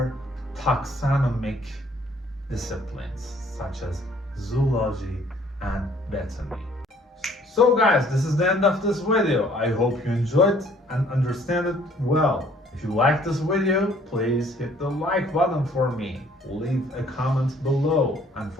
taxonomic disciplines such as zoology and botany. So guys, this is the end of this video. I hope you enjoyed and understand it well. If you like this video, please hit the like button for me. Leave a comment below. And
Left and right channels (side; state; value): both; normal; correlation 0.59